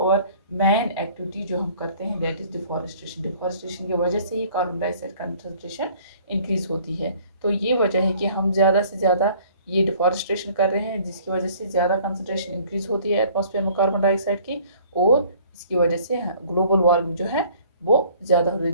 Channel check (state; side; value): inverted; both; correlation -0.55